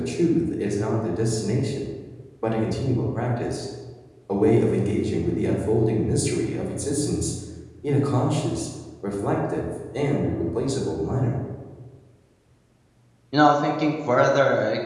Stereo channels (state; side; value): identical; both; correlation 1.00